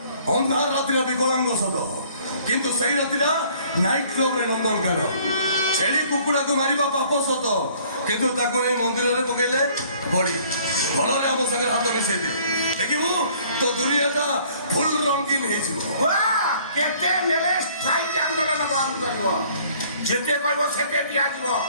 অন্ধার রাত্রিরা বিকলাঙ্গ সদ কিন্তু সেই রাত্রিরা নাইট ক্লবরে নন্দন কেন ছেড়ি কুকুড়াকে মারিবা পাপ সত কিন্তু তাকে এই মন্দিরে পকাইলে বড়ি ভলরে আমার সঙ্গে হাত মিশাইবে দেখিবু তো দুনিয়াটা ফুল রঙিন হয়েছিল কেতে নেলে স্ট্রাইক আন্দোলন বন্ধ করিব যেতে কইব সেতে দিয়া দিব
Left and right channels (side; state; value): both; inverted; correlation -0.57